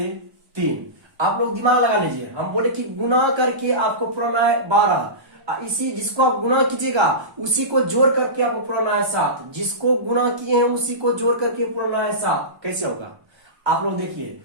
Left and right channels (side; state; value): left; late; 1.2 ms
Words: 3। आप लोग दिमाग लगा लीजिए, हम बोले कि गुना करके आपको पुराना है 12, इसी जिसको आप गुना कीजिएगा उसी को जोड़ करके आपको पुराना है 7, जिसको गुना किए हैं उसी को जोड़ करके पुराना है 7। कैसे होगा आप लोग देखिए,